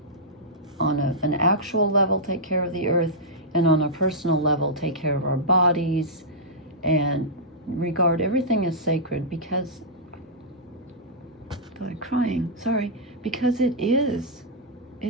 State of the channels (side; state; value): both; normal; correlation -0.12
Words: on an actual level, take care of the earth, and on a personal level, take care of our bodies and regard everything as sacred, because God, crying, sorry, because it is